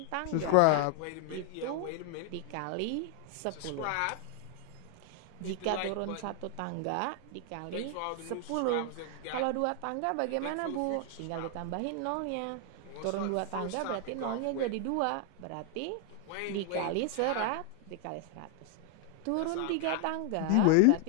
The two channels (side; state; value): both; different; correlation 0.00